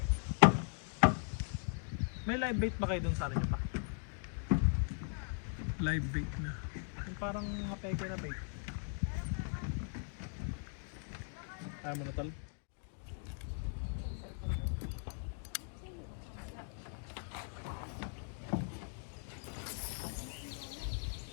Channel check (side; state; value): right; silent; 52 dB below the other